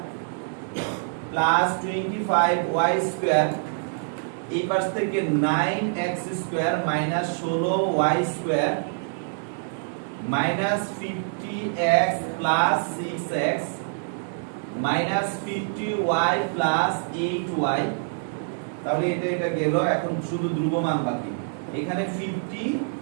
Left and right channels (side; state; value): left; silent; 61 dB below the other